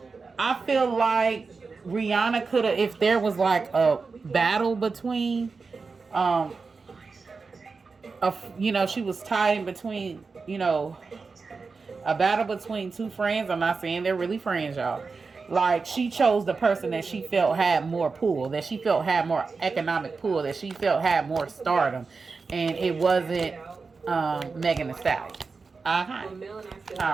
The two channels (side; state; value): left; quieter; 4.5 dB